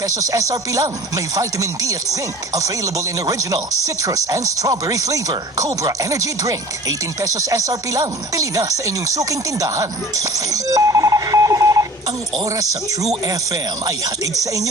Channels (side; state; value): both; normal; correlation 0.43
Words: SRP lang. May vitamin D at zinc. Available in original, citrus, and strawberry flavor. Cobra Energy Drink. 18 pesos SRP lang. Pili na sa inyong suking tindahan. Ang oras sa True FM ay hatid sa inyo